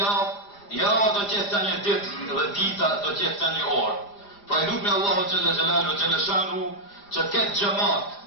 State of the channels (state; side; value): late; right; 5.0 ms